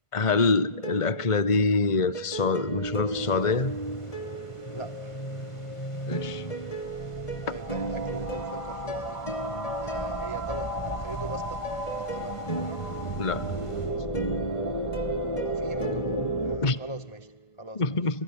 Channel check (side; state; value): right; late; 1.5 ms